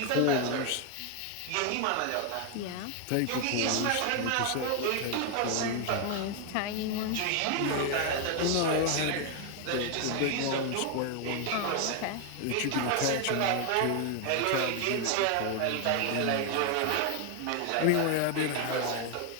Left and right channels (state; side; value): different; both; correlation 0.01